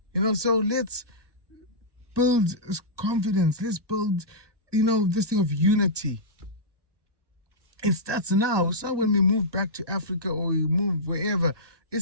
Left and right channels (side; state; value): left; late; 1.2 ms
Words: You know, so let's build confidence. Let's build, this thing of unity. It starts now. It's not when we move back to Africa or we move wherever.